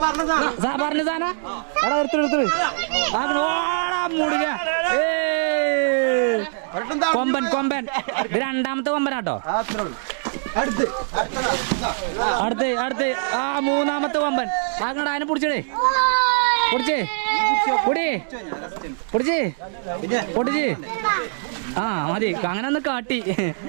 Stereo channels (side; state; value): left; silent; digital silence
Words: പറഞ്ഞ സാധന എടാ എടുത്തു മുടിക. കൊമ്പൻ ഇത് രണ്ടാമത്തെ കൊമ്പനാട്ടോ. അടുത്ത് ആ മൂന്നാമത്തെ കൊമ്പൻ. അങ്ങോട്ട് അതിനെ പിടിച്ചേ. പൊടിച്ച് ആ മതി. അങ്ങനെ ഒന്ന് കാട്ടി.